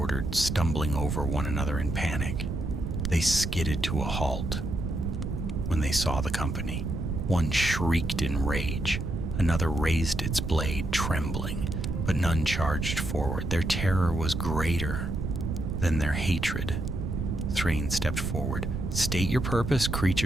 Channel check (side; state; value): right; noise; rumble, 3 dB below the sound